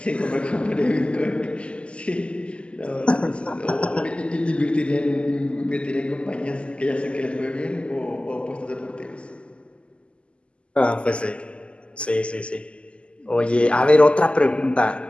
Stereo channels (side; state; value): right; late; 0.053 ms